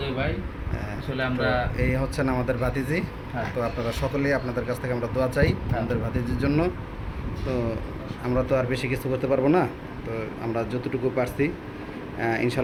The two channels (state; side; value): identical; both; correlation 1.00